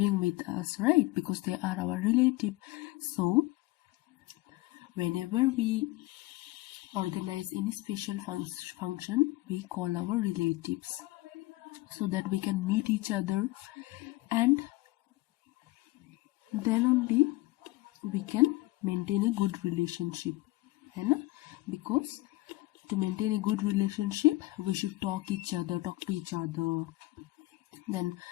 with us, right? Because they are our relative. So whenever we organize any special function, we call our relatives, so that we can meet each other, and then only we can maintain a good relationship, है ना? Because to maintain a good relationship, we should talk to each other. Then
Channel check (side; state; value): right; quieter; 20.1 dB